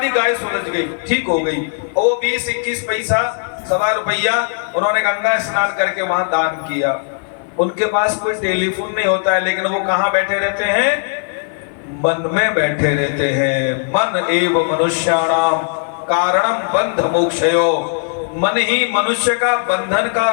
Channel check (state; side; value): silent; right; 55 dB below the other